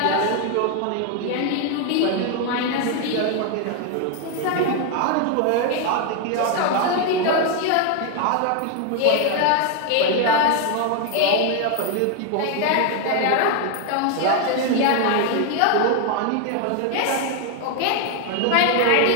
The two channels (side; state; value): both; different; correlation 0.01